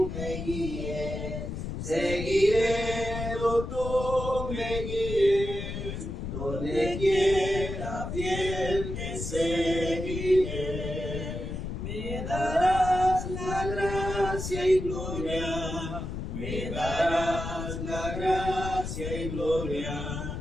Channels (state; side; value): noise; left; rumble, 5 dB below the sound